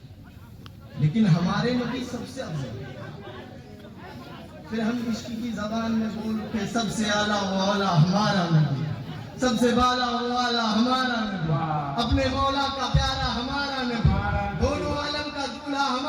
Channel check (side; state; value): both; identical; correlation 1.00